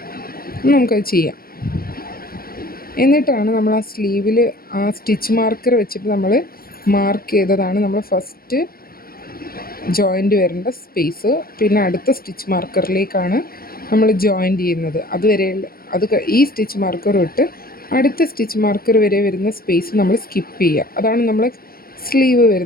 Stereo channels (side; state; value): right; late; 0.43 ms